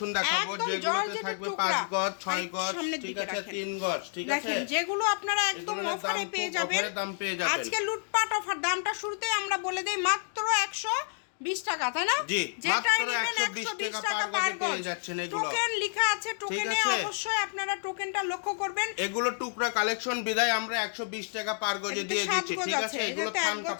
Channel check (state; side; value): silent; right; 58 dB below the other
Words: দেখাবো, যেগুলোতে থাকবে 5 গজ, 6 গজ, ঠিক আছে, 3 গজ, ঠিক আছে। দেখেন, যেগুলো আপনারা একদম অফারে পেয়ে যাবেন। আজকে লুটপাট অফার। দামটা শুরুতেই আমরা বলে দেই, মাত্র 120 টাকা, তাই না? জি, যেটা মাত্র নেবেন 120 টাকা পার গজে পেয়ে যাচ্ছেন এগুলো। টোকেন লেখা আছে, টোকেনে অবশ্যই আপনারা টোকেনটা লক্ষ্য করবেন। এগুলো টুকরা কালেকশন বিদায় আমরা 120 টাকা পার গজে দিয়ে দিচ্ছি, ঠিক আছে। এগুলো থান